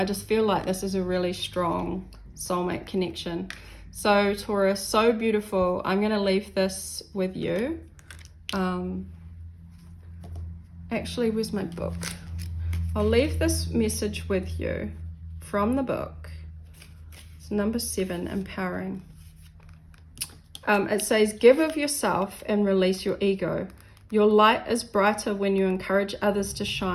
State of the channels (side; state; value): both; identical; correlation 1.00